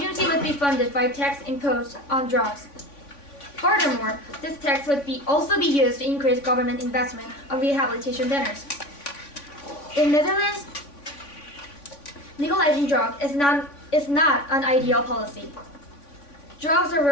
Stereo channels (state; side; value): late; right; 3.5 ms